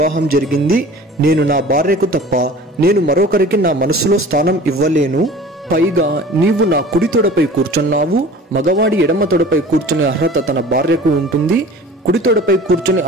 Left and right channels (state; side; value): normal; both; correlation 0.43